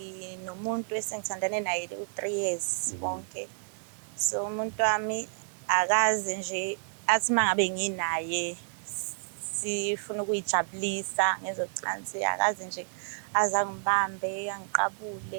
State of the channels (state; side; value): silent; left; digital silence